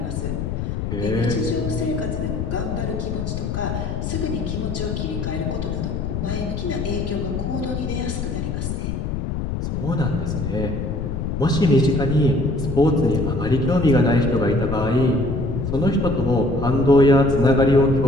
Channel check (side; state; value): left; noise; rumble, 3 dB below the sound